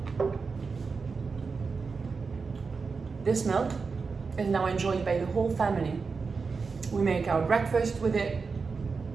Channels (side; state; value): left; quieter; 4.8 dB